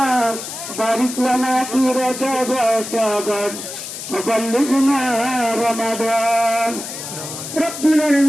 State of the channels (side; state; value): left; noise; hiss, 9 dB below the sound